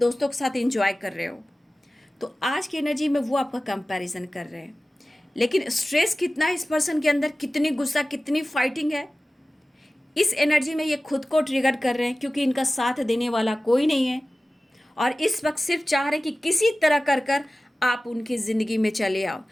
के साथ एंजॉय कर रहे हो। तो आज की एनर्जी में वो आपका कंपैरिजन कर रहे हैं, लेकिन स्ट्रेस कितना है इस पर्सन के अंदर, कितनी गुस्सा, कितनी फाइटिंग है, इस एनर्जी में ये खुद को ट्रिगर कर रहे हैं, क्योंकि इनका साथ देने वाला कोई नहीं है, और इस वक्त सिर्फ चाह रहे हैं कि किसी तरह कर कर आप उनकी ज़िंदगी में चले आओ।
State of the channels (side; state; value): both; normal; correlation 0.96